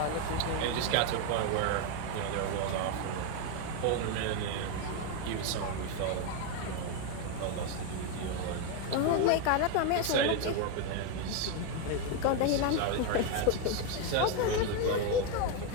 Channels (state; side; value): different; both; correlation 0.02